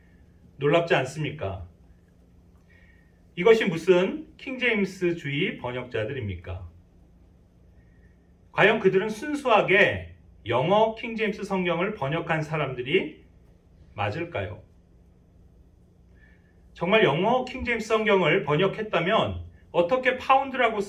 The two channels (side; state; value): both; identical; correlation 1.00